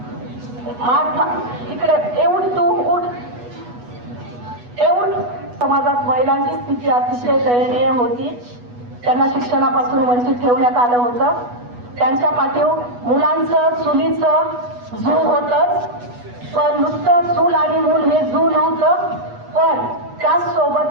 महात्मा इकडे एवढी तू उठ एवढ. समाजात महिलांची स्थिती अतिशय दयनीय होती. त्यांना शिक्षणापासून वंचित ठेवण्यात आलं होतं. त्यांच्या पाठीवर मुलांचं चुलीचं झू होतच, पण नुसतं चूल आणि मूल हे झू नव्हतं, पण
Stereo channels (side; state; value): left; late; 8.2 ms